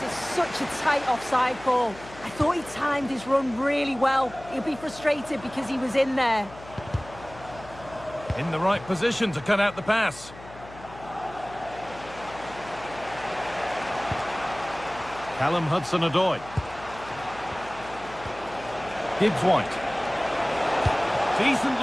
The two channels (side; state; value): left; noise; hum, 18 dB below the sound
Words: It's such a tight offside call. I thought he timed his run really well. He'll be frustrated because he was in there. In the right position to cut out the pass. Callum Hudson-Odoi. Gibbs-White. Decent